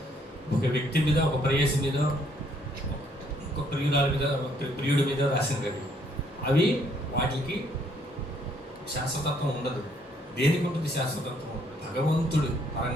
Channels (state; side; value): normal; both; correlation 0.67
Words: ఒక వ్యక్తి మీద, ఒక ప్రేయసి మీద, ఒక ప్రియురాల మీద, ప్రియుడి మీద రాసినవి అవి. వాటికి శాశ్వతత్వం ఉండదు. దేనికి ఉంటుంది శాశ్వతత్వం? భగవంతుడు